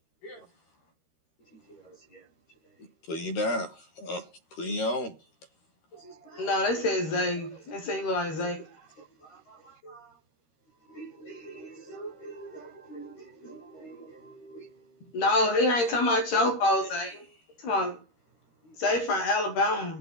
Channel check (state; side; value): late; right; 13 ms